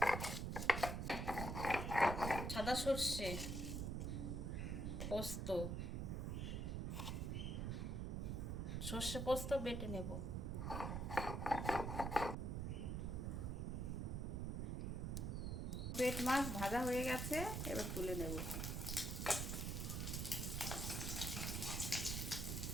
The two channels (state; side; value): noise; right; rumble, 1 dB below the sound